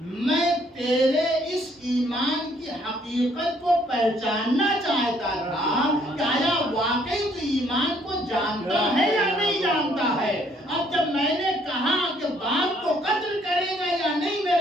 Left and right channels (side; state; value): both; normal; correlation 0.65